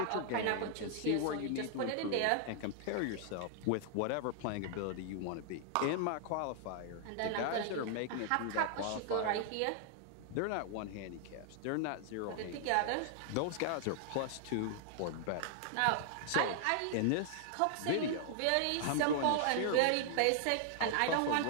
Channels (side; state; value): both; different; correlation 0.00